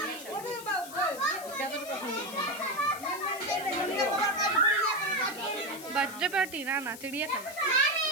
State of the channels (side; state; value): left; noise; hiss, 14 dB below the sound